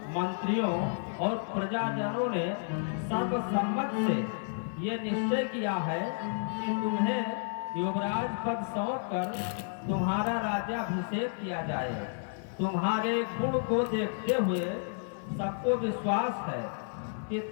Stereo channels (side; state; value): right; silent; 57 dB below the other